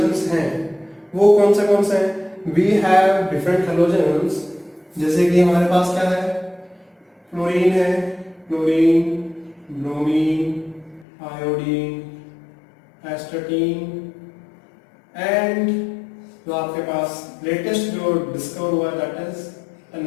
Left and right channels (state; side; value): drops out; right; at 11.1 s